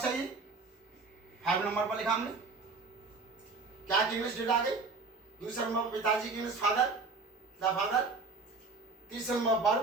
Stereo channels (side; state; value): left; quieter; 4.1 dB